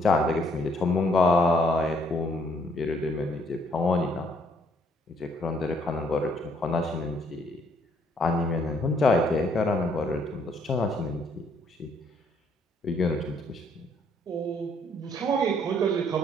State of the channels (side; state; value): both; normal; correlation 0.66